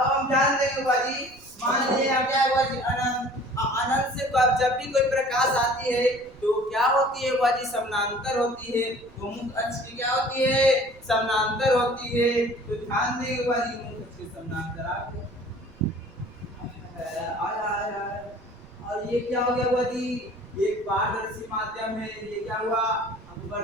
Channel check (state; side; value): noise; right; rumble, 24 dB below the sound